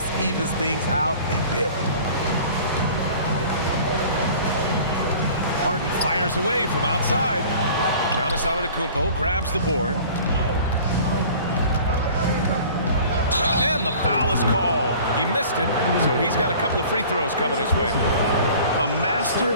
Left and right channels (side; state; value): both; inverted; correlation -0.46